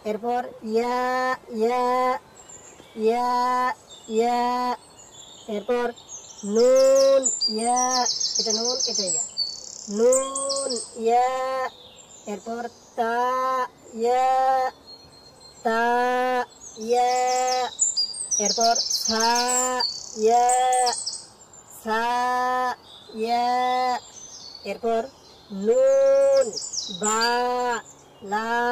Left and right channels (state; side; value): identical; both; correlation 1.00